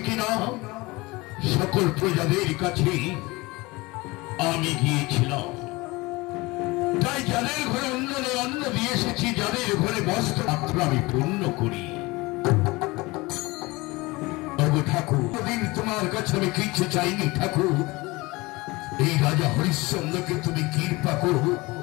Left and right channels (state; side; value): quieter; right; 22.8 dB